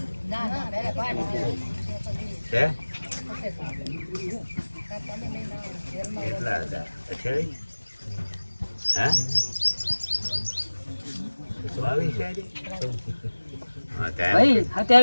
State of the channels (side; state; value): both; inverted; correlation -1.00